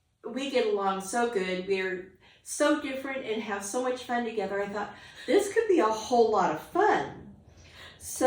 we get along so good. We're so different and have so much fun together. I thought, this could be a whole lot of fun.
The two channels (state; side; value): identical; both; correlation 1.00